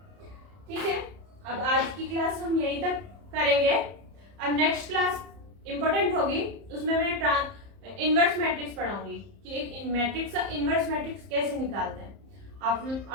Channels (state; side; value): late; left; 30 ms